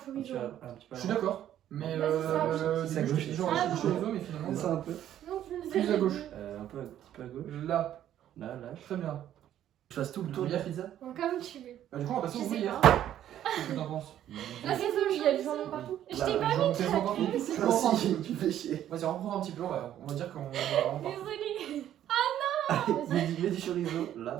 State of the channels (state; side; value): quieter; left; 11.4 dB